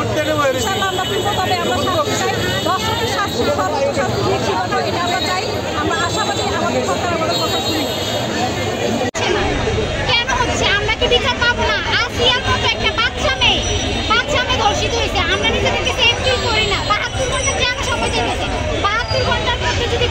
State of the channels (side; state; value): both; identical; correlation 1.00